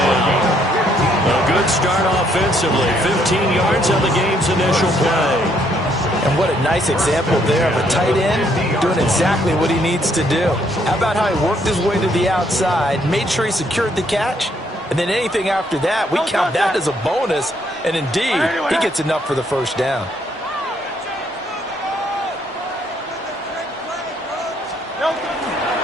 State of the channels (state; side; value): normal; both; correlation 0.69